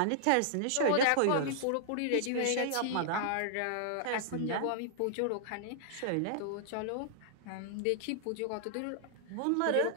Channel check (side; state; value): both; different; correlation -0.01